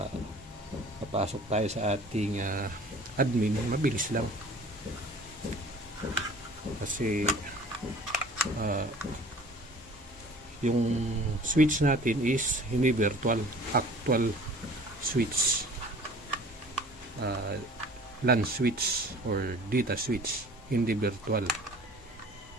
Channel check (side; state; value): both; normal; correlation 0.47